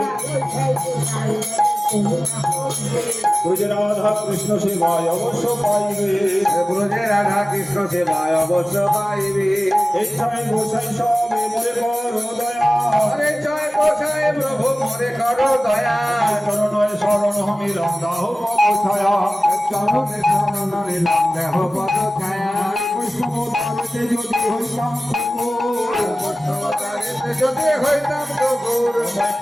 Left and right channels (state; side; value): normal; both; correlation 0.96